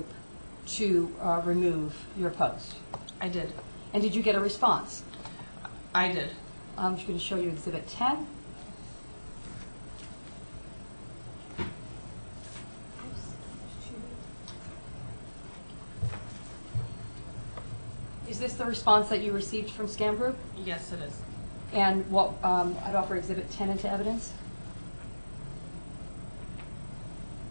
to remove your post? I did. And did you get a response? I did. I'm just going to show you Exhibit 10. Is this the response that you received from Scam Group? Yes, it is. And what I'd offer Exhibit 10 into evidence.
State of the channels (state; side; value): inverted; both; correlation -1.00